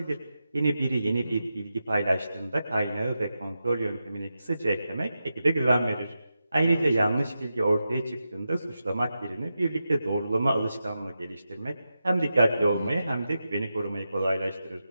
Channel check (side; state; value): both; inverted; correlation -0.89